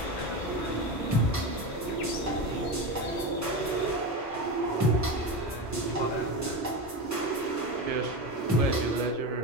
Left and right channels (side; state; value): both; normal; correlation 0.21